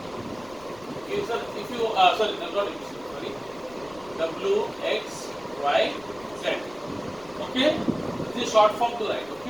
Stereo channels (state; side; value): noise; left; rumble, 23 dB below the sound